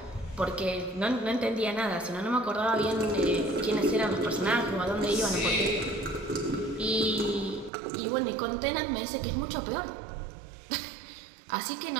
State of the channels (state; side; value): drops out; left; at 7.7 s